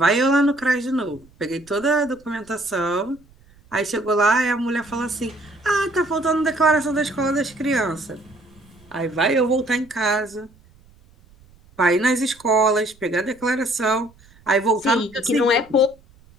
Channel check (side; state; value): right; noise; rumble, 28 dB below the sound